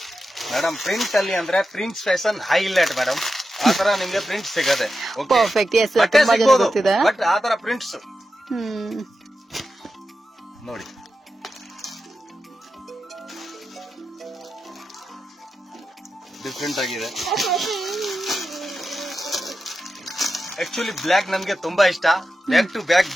ಮೇಡಮ್. ಪ್ರಿಂಟ್ ಅಲ್ಲಿ ಅಂದ್ರೆ ಪ್ರಿಂಟ್ಸ್ ಫ್ಯಾಷನ್ ಹೈಲೈಟ್ ಮೇಡಮ್, ಆತರ ನಿಮ್ಗೆ ಪ್ರಿಂಟ್ ಸಿಗದೆ. ಪರ್ಫೆಕ್ಟ್. ಎಸ್, ತುಂಬಾ ಜನ ಗೊತ್ತಿದೆ, ಬಟ್ ಆತರ ಪ್ರಿಂಟ್ಸ್ ನೋಡಿ. ಡಿಫ್ರೆಂಟ್ ಆಗಿದೆ. ಆಕ್ಚುಲಿ ಬ್ಲ್ಯಾಕ್ ನನ್ಗೆ ತುಂಬಾ ಇಷ್ಟ, ಬ್ಯಾಕ್ ಟು ಬ್ಯಾಕ್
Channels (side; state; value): both; normal; correlation 0.90